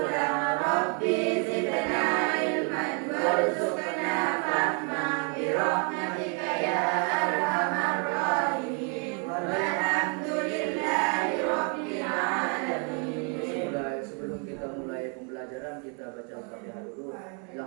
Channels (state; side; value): quieter; left; 37.2 dB